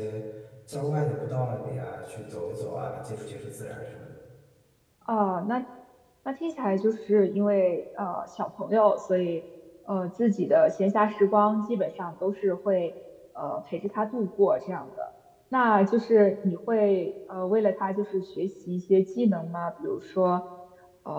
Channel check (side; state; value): both; identical; correlation 1.00